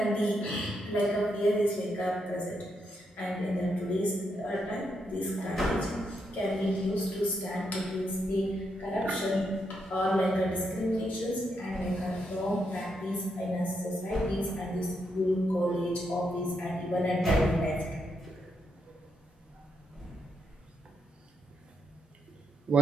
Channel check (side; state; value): both; normal; correlation 0.80